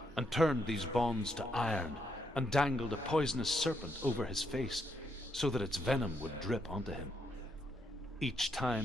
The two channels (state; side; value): normal; both; correlation 0.77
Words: and turned these bonds to iron, and dangled a poisonous serpent over his face, so that its venom would drip onto him. Each